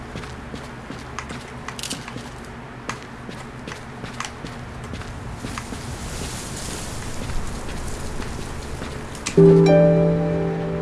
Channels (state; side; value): identical; both; correlation 1.00